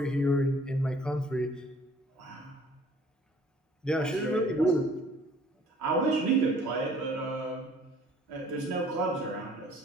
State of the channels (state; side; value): normal; both; correlation 0.55